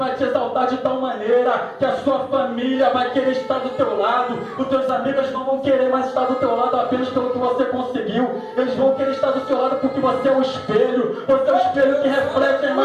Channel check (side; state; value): both; identical; correlation 1.00